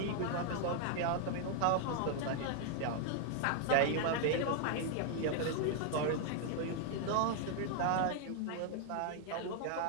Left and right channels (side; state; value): both; different; correlation 0.00